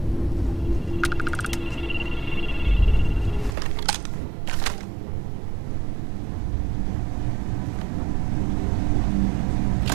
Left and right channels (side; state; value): left; drops out; at 3.6 s